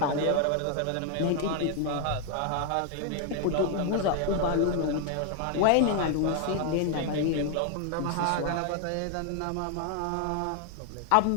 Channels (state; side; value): different; both; correlation 0.00